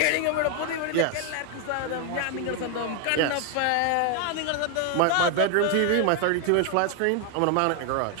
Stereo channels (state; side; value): different; both; correlation 0.00